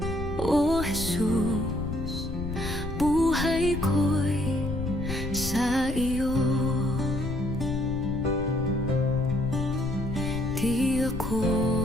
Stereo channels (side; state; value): left; noise; rumble, 8 dB below the sound